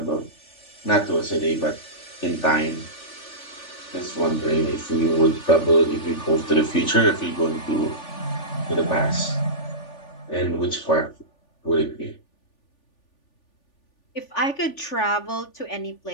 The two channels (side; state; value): right; late; 3.4 ms